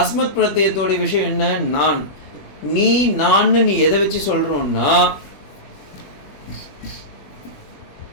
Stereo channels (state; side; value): late; right; 21 ms